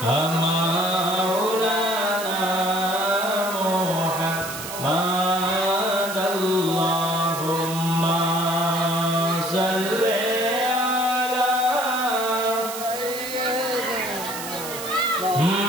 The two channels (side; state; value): right; noise; hiss, 9 dB below the sound